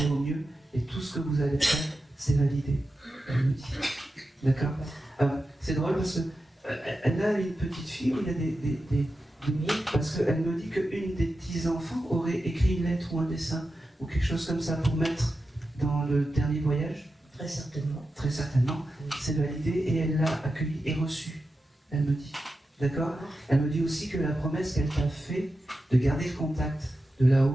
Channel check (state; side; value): normal; both; correlation 0.91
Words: au mieux et tout ce que vous allez faire, c'est validé. Elle me dit. D'accord. C'est drôle parce qu'elle a une petite fille où il y a des parce qu'elle me dit qu'une des petits-enfants aurait écrit une lettre ou un dessin ou quelque chose comme ça pour mettre dans le dernier voyage. Très certainement. Très certainement. C'est validé et elle l'a accueilli et reçu. Elle me dit. D'accord? Elle me dit aussi que la promesse qu'elle t'a fait de garder le contact de